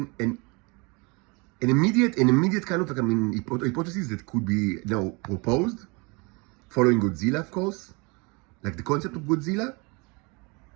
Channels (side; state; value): left; quieter; 28.8 dB